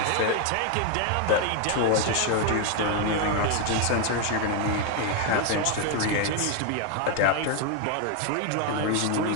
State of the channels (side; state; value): both; different; correlation 0.01